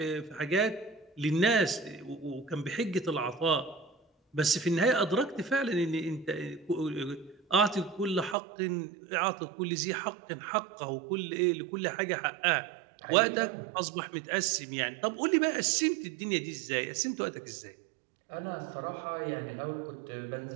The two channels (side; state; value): left; drops out; at 8.3 s